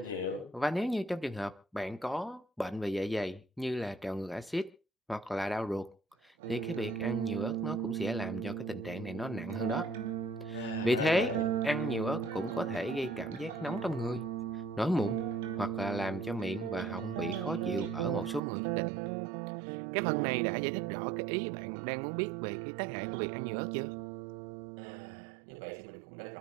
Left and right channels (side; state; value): left; drops out; at 18.4 s